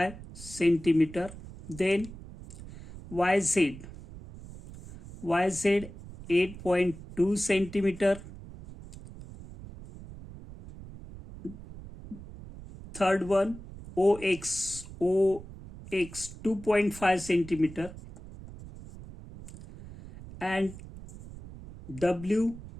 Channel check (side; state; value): right; noise; rumble, 15 dB below the sound